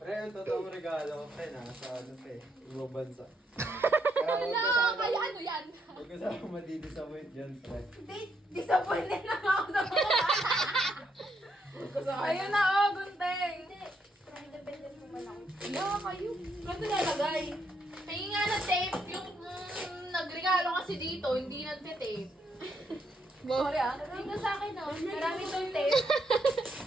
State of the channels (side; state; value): both; normal; correlation 0.76